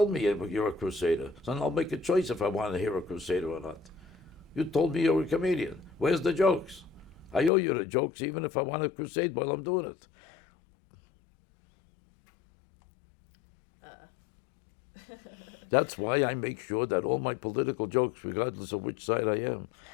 me you're a crusader, so I'll make a choice if I want to hear a crusader or not. You told me you're a comedian. Where's the jokes? I owe you the jokes even if I want to crusade while I'm doing it. That's why I make sure that all my political jokes, regardless of which side I am,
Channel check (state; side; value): drops out; right; at 7.5 s